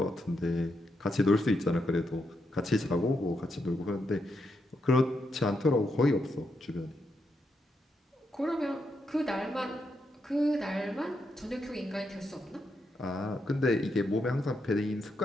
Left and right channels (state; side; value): normal; both; correlation 0.82